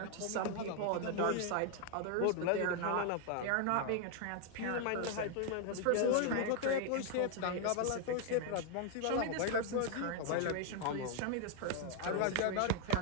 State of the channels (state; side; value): different; both; correlation 0.00